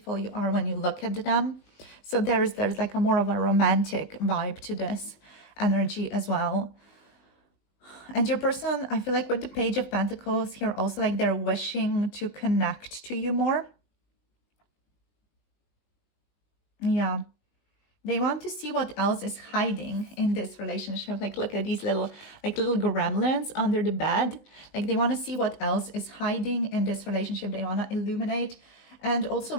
you are when you look at them. So there's like a more of a romantic vibe to this energy as well. And your person, I feel like with the Page of Pentacles here also, like they're wishing to connect to you more. Yeah. They want to see what else is hiding in this relationship. Like, look at these little gremlins under the bed. Like, they want to see what else is hiding in this relationship. They want to illuminate and also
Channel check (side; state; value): right; late; 20 ms